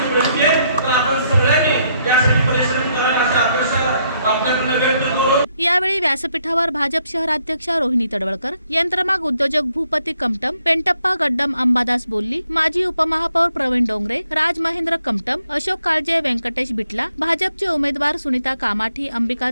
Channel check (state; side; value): inverted; both; correlation -0.74